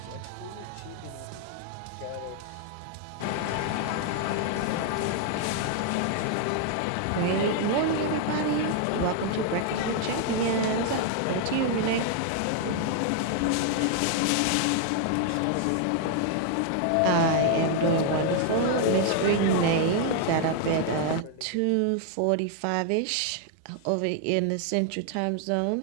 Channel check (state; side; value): different; both; correlation 0.00